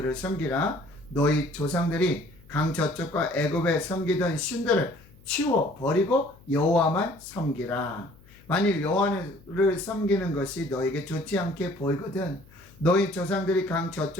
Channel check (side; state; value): left; noise; hum, 26 dB below the sound